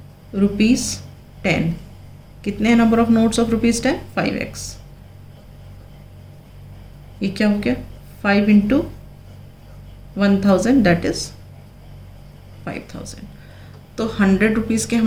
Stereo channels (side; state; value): both; identical; correlation 1.00